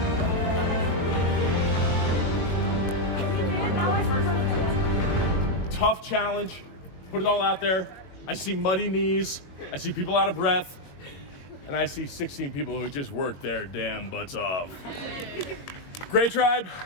Tough challenge. Put it all out there. I see muddy knees. I see people out of breath. And I see 16 people who just worked their damn butts off. Great Tribe,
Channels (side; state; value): right; late; 21 ms